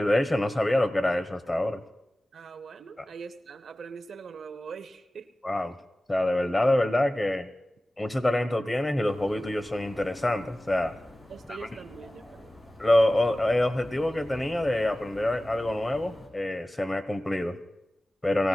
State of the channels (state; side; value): normal; both; correlation 0.97